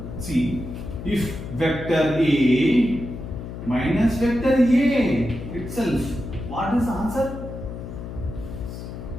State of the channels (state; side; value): noise; left; hum, 9 dB below the sound